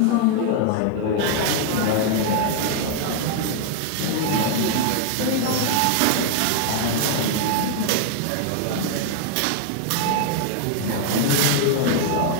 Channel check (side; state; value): both; different; correlation 0.00